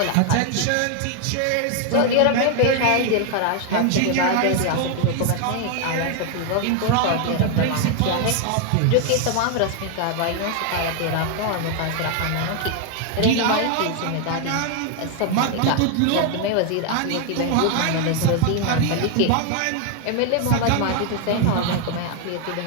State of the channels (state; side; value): different; both; correlation 0.00